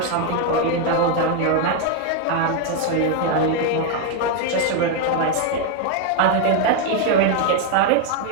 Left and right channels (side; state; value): both; different; correlation 0.01